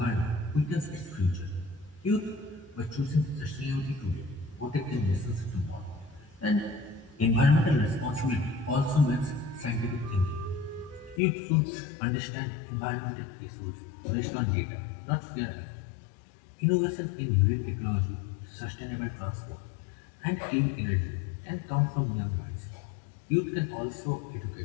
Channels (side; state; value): right; drops out; at 11.2 s